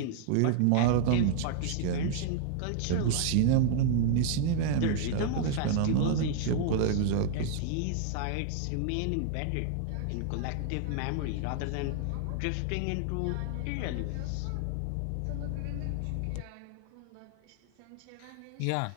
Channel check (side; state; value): both; different; correlation 0.00